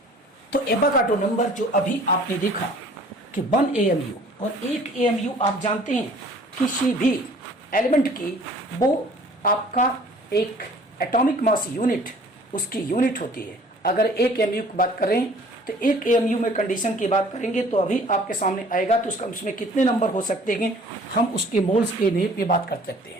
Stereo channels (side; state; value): both; normal; correlation 0.52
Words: तो एवोगाड्रो नंबर जो अभी आपने देखा कि 1 AMU और 1 AMU आप जानते हैं किसी भी एलिमेंट की वो आपका एक एटॉमिक मास यूनिट उसकी यूनिट होती है। अगर 1 AMU की बात करें तो 1 AMU में कंडीशन की बात करेंगे तो अभी आपके सामने आएगा, तो उसका उसमें कितने नंबर हो सकते हैं हम उसके मोल्स के नेम पे बात कर सकते